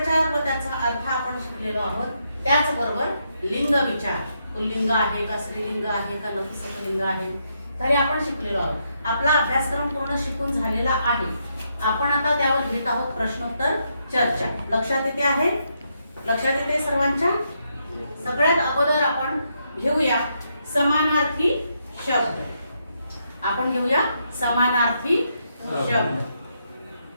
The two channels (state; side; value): inverted; both; correlation -0.79